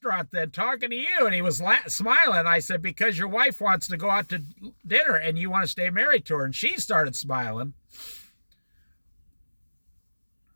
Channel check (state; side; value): inverted; both; correlation -1.00